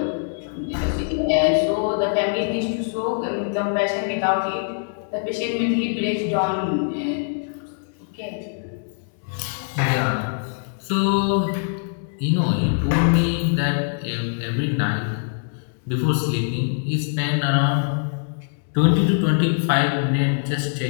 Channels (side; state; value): right; silent; digital silence